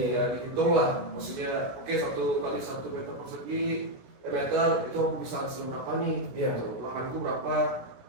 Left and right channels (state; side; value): late; left; 16 ms